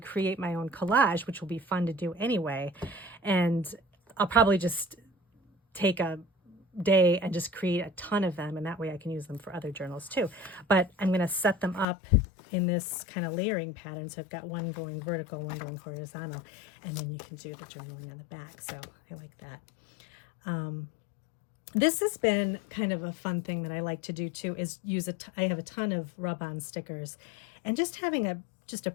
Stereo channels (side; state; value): right; drops out; at 11.9 s